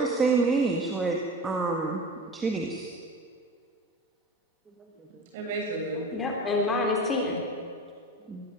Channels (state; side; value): normal; both; correlation 0.33